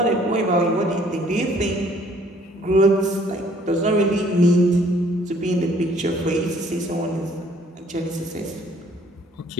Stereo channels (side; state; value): both; normal; correlation 0.60